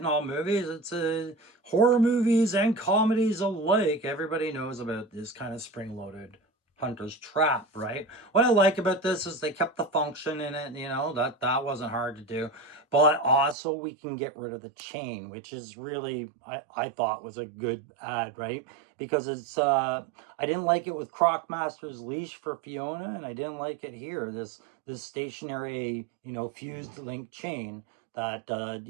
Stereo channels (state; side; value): drops out; left; at 13.6 s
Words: all movies. It's horror movies and comedies alike. Everybody knows about this kind of spring-loaded hunter's trap, right? What I like about this is they kept the function in it. You know, that wasn't hard to do. But also we can get rid of the chain, which is really, I thought was a good add, right? Because it's, I didn't like it with Crocmaster's leash for Fiona, and I didn't like it here, this stationary, you know, fused link chain that,